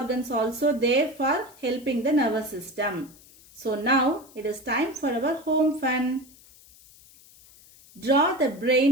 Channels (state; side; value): noise; left; hiss, 24 dB below the sound